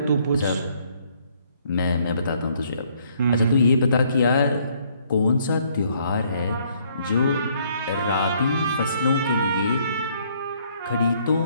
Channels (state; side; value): inverted; both; correlation -0.66